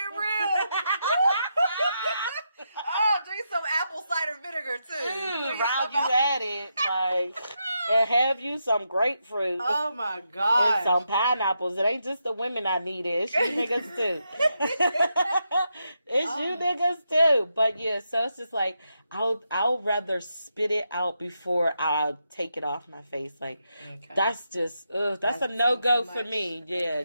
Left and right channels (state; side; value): inverted; both; correlation -0.84